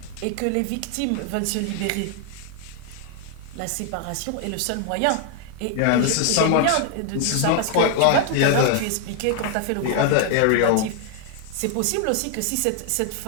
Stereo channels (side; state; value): both; different; correlation 0.00